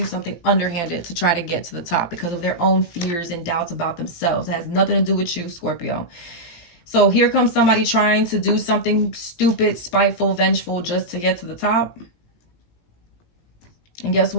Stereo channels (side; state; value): right; late; 18 ms